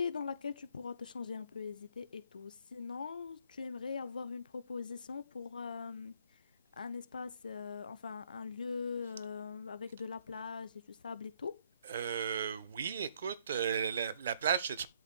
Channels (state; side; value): inverted; both; correlation -0.67